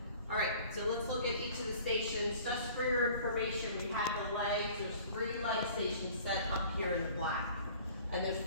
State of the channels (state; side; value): inverted; both; correlation -0.49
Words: All right, so let's look at each of the stations. Just for your information, we have the legs. There's 3 leg stations set up here in the black. And there's